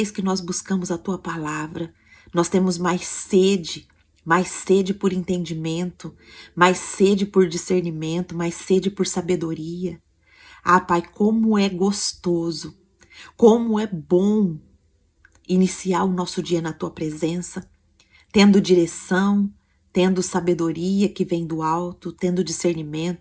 que nós buscamos a tua palavra, nós temos mais sede por entendimento, mais sede por discernimento, mais sede por sabedoria. Ah, Pai, como é gostoso, como é bom iniciar o nosso dia na tua presença, tendo direção, tendo sabedoria que vem do alto, tendo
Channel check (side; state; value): both; identical; correlation 1.00